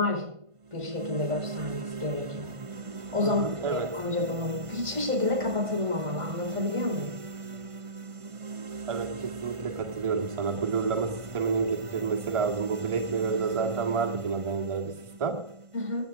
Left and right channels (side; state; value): left; late; 1.5 ms